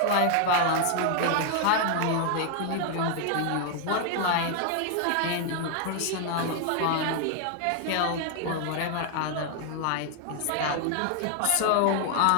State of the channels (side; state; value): both; different; correlation 0.00